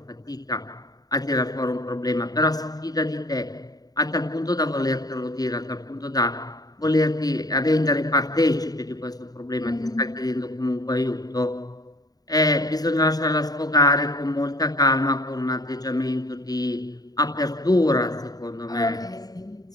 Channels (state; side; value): late; right; 0.18 ms